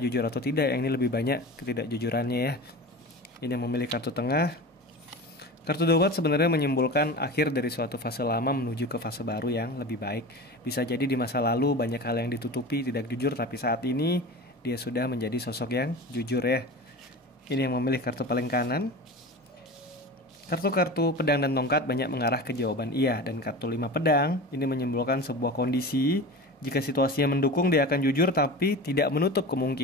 jujur atau tidak, yang ini lebih banyak ketidakjujurannya ya. Ini yang memilih kartu tengah. Kartu Dobat sebenarnya menyimpulkan akhir dari suatu fase lama menuju ke fase baru yang lebih baik. Bisa jadi di masa lalu banyak hal yang ditutupi, tidak jujur, tapi saat ini dia sudah menjadi sosok yang jujur ya. Ini yang memilih kartu paling kanan. Kartu-kartu pedang dan tongkat banyak mengarah ke jawaban iya. Dan kartu 5 pedang ini menyimpulkan sebuah kondisi. Jika situasinya mendukung dia akan jujur, tapi tidak menutup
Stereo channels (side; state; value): both; normal; correlation 0.32